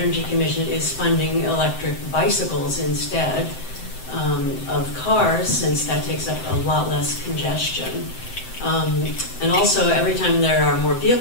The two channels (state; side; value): late; right; 7.8 ms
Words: Commission is funding electric bicycles instead of cars, since that takes up a lot less congestion. And also, every time there are more